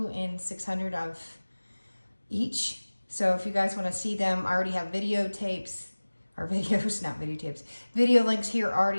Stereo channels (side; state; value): both; inverted; correlation -1.00